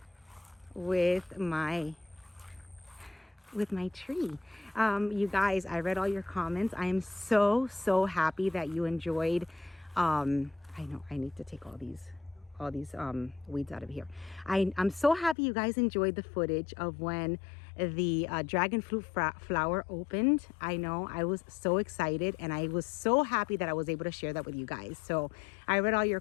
with my tree. You guys, I read all your comments. I am so happy that you enjoyed. I know I need to take all these weeds out of here. I'm so happy you guys enjoyed the footage of when the dragon fruit flower opened. I know I was so excited, and I was so happy that I was able to share that with you guys. So I read all your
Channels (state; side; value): drops out; right; at 15.4 s